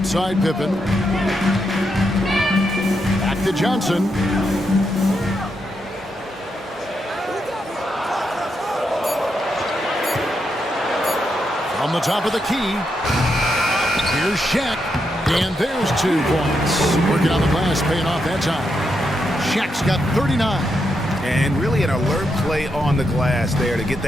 Pippen. Back to Johnson. On the top of the key. Here's Shaq. And there's 2 points. Working on the glass, paying off that time. Shaq's got 39. And really an alert play on the glass there to get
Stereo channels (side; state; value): both; normal; correlation 0.82